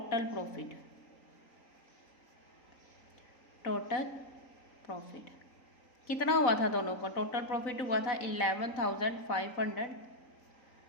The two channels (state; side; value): late; right; 3.9 ms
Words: प्रॉफिट। टोटल प्रॉफिट कितना हुआ था दोनों को, टोटल प्रॉफिट हुआ था